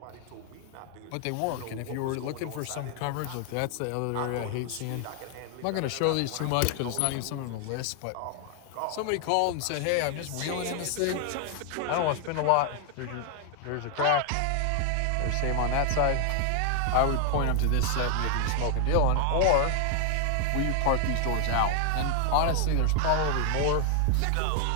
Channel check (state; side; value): different; both; correlation 0.00